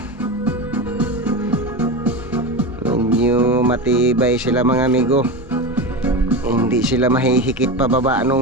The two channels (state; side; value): normal; both; correlation 0.21